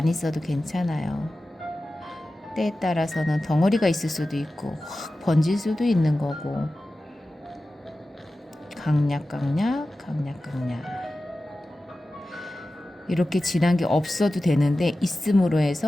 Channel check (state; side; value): normal; both; correlation 0.94